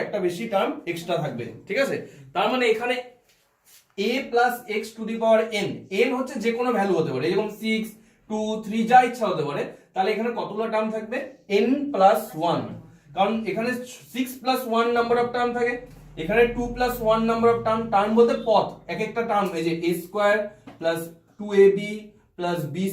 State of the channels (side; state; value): both; identical; correlation 1.00